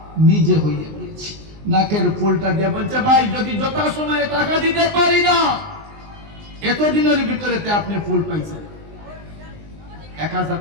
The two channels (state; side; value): late; left; 19 ms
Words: নিজে হইয়া গিয়েছে। নাকের ফুলটা দিয়ে বলছে, ভাই যদি যথাসময়ে টাকা দিতে পারি না, এতদিনের ভিতরে আপনি ফুল পাইছেন, 1000